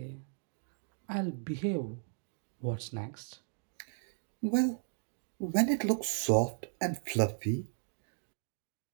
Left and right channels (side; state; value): left; silent; digital silence